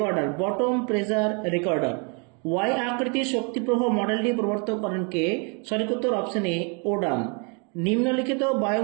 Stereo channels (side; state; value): left; quieter; 35.0 dB